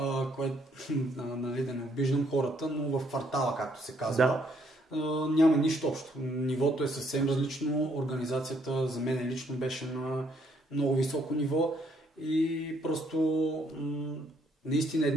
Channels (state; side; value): normal; both; correlation 0.69